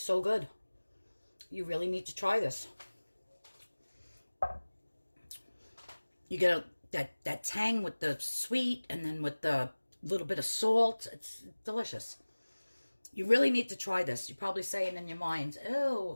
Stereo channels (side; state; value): both; inverted; correlation -1.00